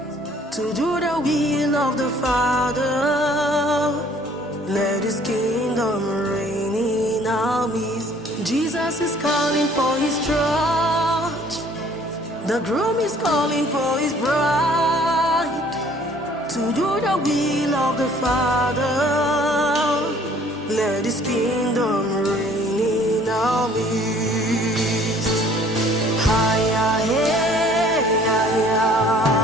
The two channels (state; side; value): normal; both; correlation 0.56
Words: to do the will of the Father. Let his kingdom reign in our midst. Jesus is calling for his church. The groom is calling for his bride to do the will of the Father. Let his kingdom reign in our midst. Hiya, hey, hiya.